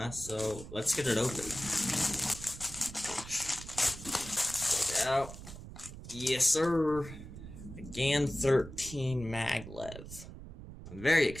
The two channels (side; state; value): right; noise; rumble, 13 dB below the sound